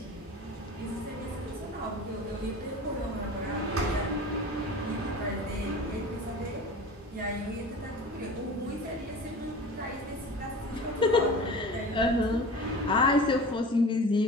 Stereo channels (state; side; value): normal; both; correlation 0.37